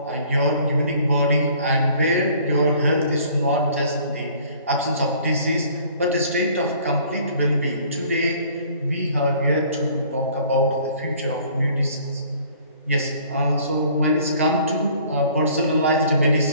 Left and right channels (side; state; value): both; inverted; correlation -0.54